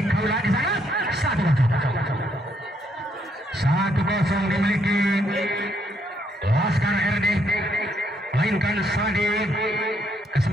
Kaula di sana. 1-0 dimiliki Laskar RD, mainkan Sadi.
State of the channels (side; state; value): both; normal; correlation 0.73